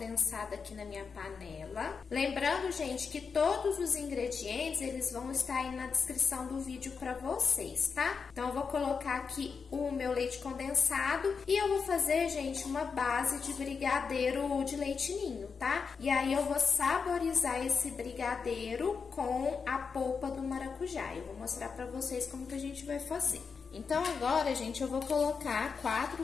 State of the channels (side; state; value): right; quieter; 5.5 dB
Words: aqui na minha panela. Lembrando, gente, que todos os ingredientes eles vão estar aí na descrição do vídeo pra vocês, tá? Então eu vou colocar aqui o meu leite condensado e eu vou fazer, gente, uma base de brigadeiro de leite ninho, tá? E aí eu vou saborizar esse brigadeiro com a polpa do maracujá. Eu vou mostrar pra vocês como que a gente vai fazer. Então agora, gente, eu vou colocar